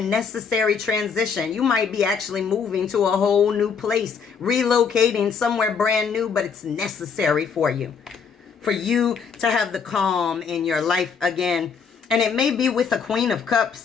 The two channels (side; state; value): right; quieter; 6.1 dB